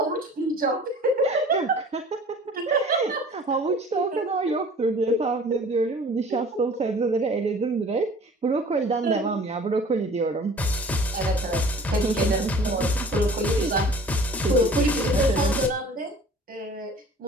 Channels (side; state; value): both; normal; correlation 0.47